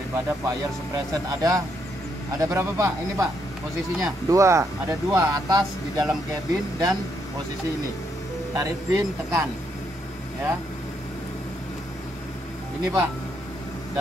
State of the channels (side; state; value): both; normal; correlation 0.76